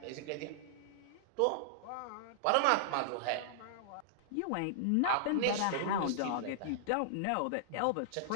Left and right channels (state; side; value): different; both; correlation -0.01